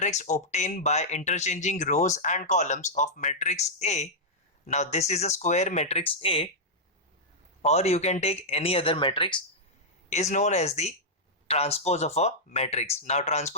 obtained by interchanging rows and columns of matrix A. Now this is a square matrix A, or you can take any other matrix, is known as the transpose of a matrix. Now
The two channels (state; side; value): normal; both; correlation -0.08